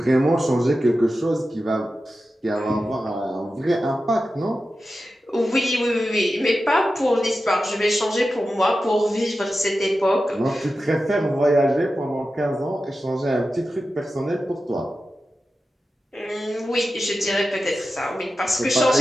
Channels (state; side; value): normal; both; correlation 0.92